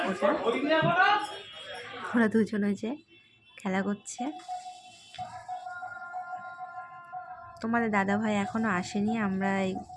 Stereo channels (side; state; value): both; identical; correlation 1.00